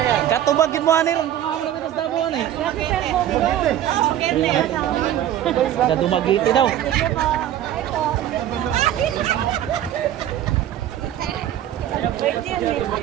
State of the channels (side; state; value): left; quieter; 11.6 dB